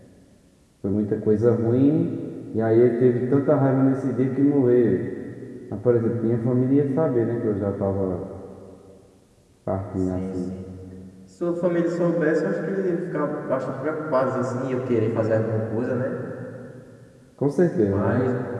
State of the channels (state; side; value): identical; both; correlation 1.00